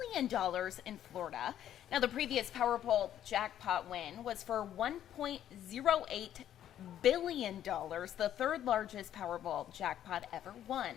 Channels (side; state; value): right; quieter; 11.0 dB